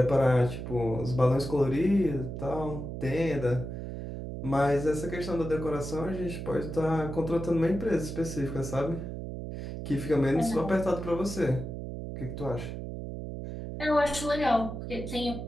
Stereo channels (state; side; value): noise; right; hum, 7 dB below the sound